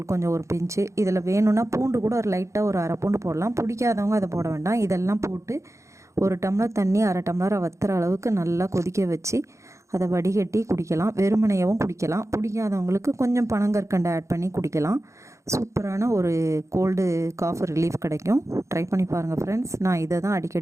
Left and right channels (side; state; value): left; late; 0.14 ms